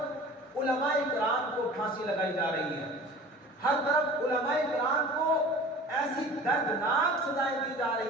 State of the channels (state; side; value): normal; both; correlation 0.42